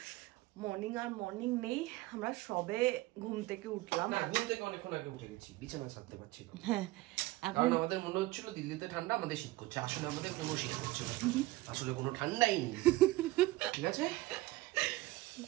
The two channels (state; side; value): quieter; left; 18.6 dB